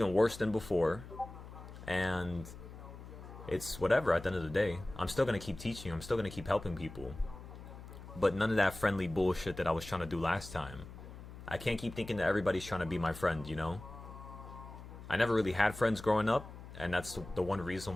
worse than before. And it's whatever at the end of the day. I'm still going to keep teaching. I'm still going to keep helping people. But none of that friendly bullshit that I was trying to do last time. I can't keep thinking that everybody's trying to be my friend, you know? I never really had friends growing up. And that's the one reason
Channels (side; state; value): left; noise; hum, 14 dB below the sound